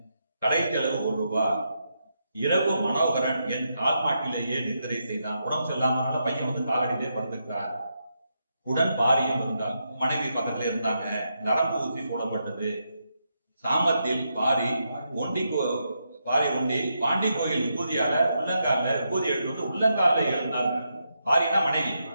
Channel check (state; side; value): inverted; both; correlation -0.83